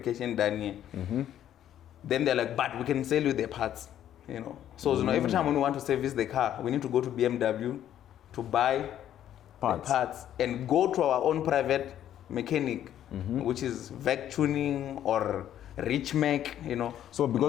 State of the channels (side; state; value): right; quieter; 11.1 dB